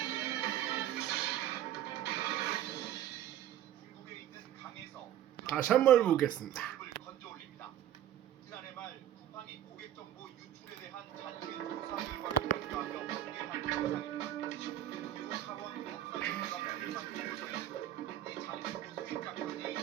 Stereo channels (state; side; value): quieter; left; 11.7 dB